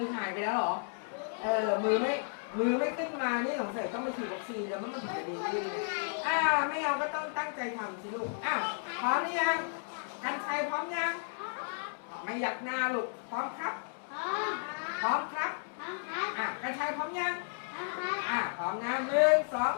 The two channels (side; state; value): right; silent; digital silence